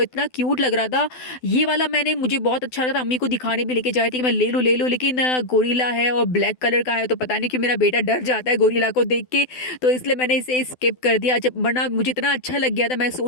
इतना क्यूट लग रहा था। ये वाला मुझे बहुत अच्छा लगा था, अम्मी को दिखाने भी लेके जाए थे कि मैं ले लूँ, लेकिन गोरिल्ला है और ब्लैक कलर का है, तो पता नहीं कि मेरा बेटा डर जाता है गोरिल्ला को देख के, तो इसलिए मैंने इसे स्किप कर दिया। जब वरना मुझे इतना अच्छा लग गया था, मैं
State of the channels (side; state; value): right; late; 12 ms